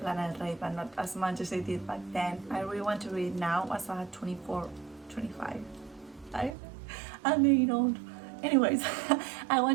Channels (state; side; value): drops out; left; at 6.6 s